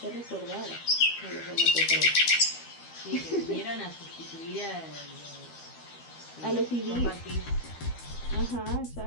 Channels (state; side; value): late; right; 12 ms